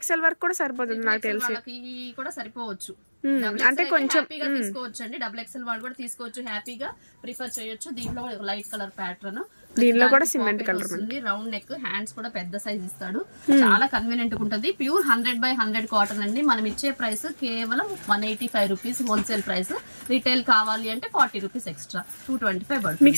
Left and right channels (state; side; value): inverted; both; correlation -1.00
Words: వరకు కూడా సరిపోతుంది నాకు తెలిసి. కూడా సరిపోవచ్చు. అంటే కొంచెం తీసుకోవచ్చు అండి. XXL వాళ్ళు కూడా తీసుకోవచ్చు, హ్యాపీగా ప్రిఫర్ చేయొచ్చు. దీంట్లో లైట్ కలర్ ప్యాటర్న్, దీనిలో కూడా సిమెంట్ కలర్ ఉంది. రౌండ్ నెక్, హ్యాండ్స్ కూడా పెద్ద సైజ్ ఇస్తాడు. చాలా కన్వీనియంట్ గా ఉంటుంది. ప్యూర్ 100/100 కాటన్ అండి. మనం ఇచ్చే ప్రైస్ కేవలం 185 రూపీస్ హోల్సేల్ ప్రైస్. రీటైల్ కావాలి అంటే 40 రూపీస్ ఎక్స్ట్రా, 225 పడుతుంది.